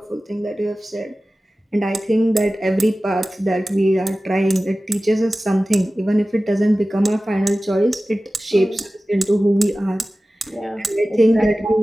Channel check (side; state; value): both; normal; correlation 0.96